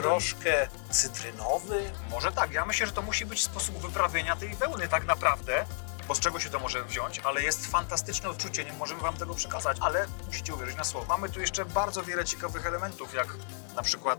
cytrynowy. Może tak, ja myślę, że to musi być sposób wyprawienia tej wełny tak naprawdę, bo z czego się to może wziąć, ale jest fantastyczne odczucie, nie możemy wam tego przekazać, ale musicie uwierzyć na słowo. Mamy tu jeszcze bardzo wiele ciekawych elementów, jak na przykład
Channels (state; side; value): silent; right; 57 dB below the other